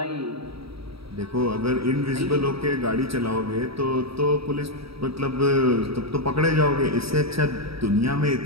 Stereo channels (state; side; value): late; left; 0.77 ms